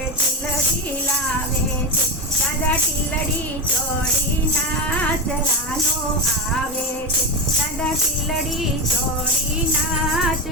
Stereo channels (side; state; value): both; normal; correlation 0.13